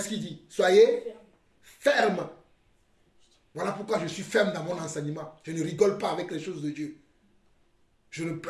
qu'il dit? Soyez fermes. Voilà pourquoi je suis ferme dans mon enseignement. Je ne rigole pas avec les choses de Dieu.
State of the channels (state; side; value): identical; both; correlation 1.00